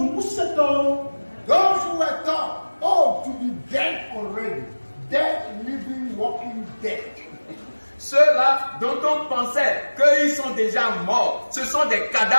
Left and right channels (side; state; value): both; inverted; correlation -1.00